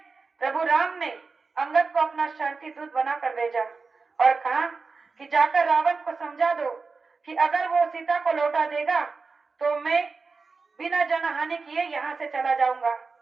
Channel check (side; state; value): left; quieter; 4.4 dB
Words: प्रभु राम ने अंगद को अपना शांति दूत बनाकर भेजा और कहा कि जाकर रावण को समझा दो कि अगर वो सीता को लौटा देगा तो मैं बिना जनहानि किए यहाँ से चला जाऊंगा।